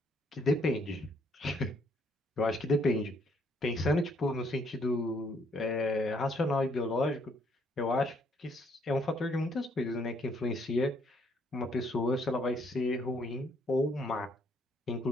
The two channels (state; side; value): normal; both; correlation 0.68